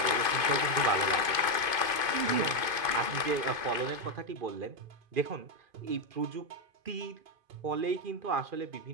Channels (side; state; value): left; late; 2.5 ms